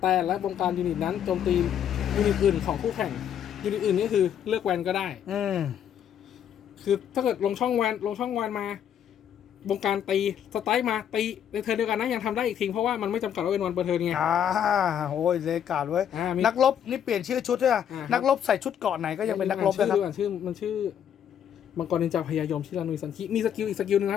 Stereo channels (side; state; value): right; quieter; 9.3 dB